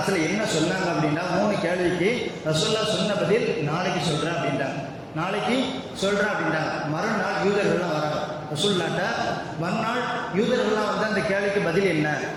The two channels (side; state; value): both; identical; correlation 1.00